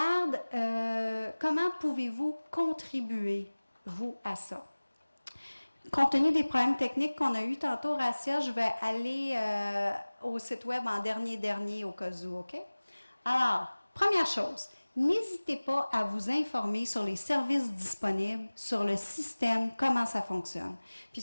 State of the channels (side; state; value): both; inverted; correlation -1.00